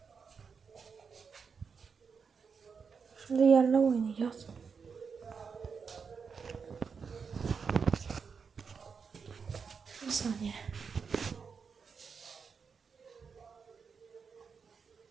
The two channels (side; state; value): left; quieter; 5.8 dB